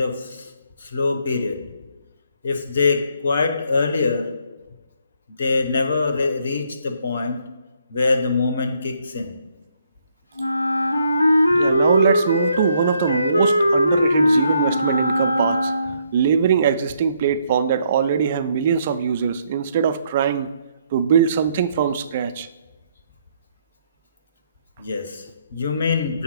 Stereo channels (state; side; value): inverted; both; correlation -0.71